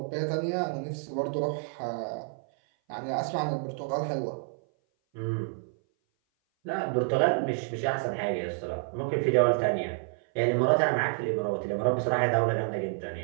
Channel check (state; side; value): silent; left; 56 dB below the other